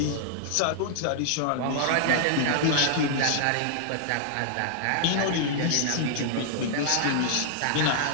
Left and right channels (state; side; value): different; both; correlation -0.01